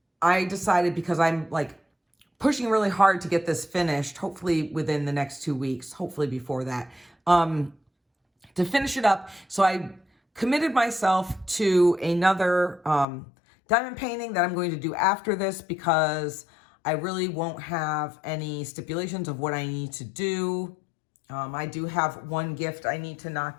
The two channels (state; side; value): drops out; right; at 13.1 s